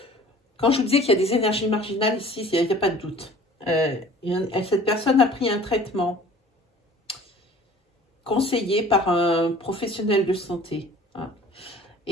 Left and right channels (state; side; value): normal; both; correlation 0.48